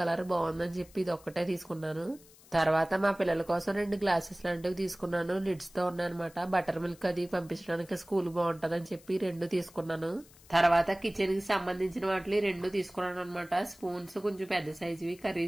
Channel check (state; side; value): noise; left; hiss, 24 dB below the sound